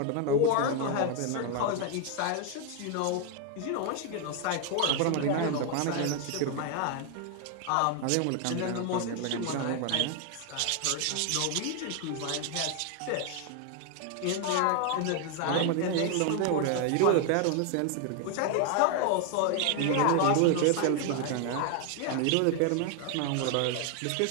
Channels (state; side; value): different; both; correlation 0.01